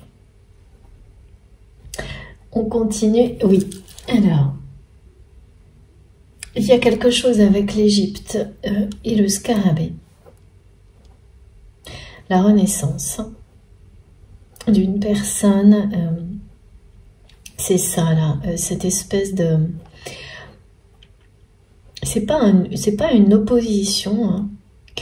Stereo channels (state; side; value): identical; both; correlation 1.00